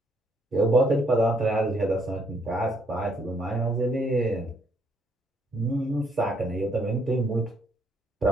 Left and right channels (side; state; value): both; normal; correlation 0.70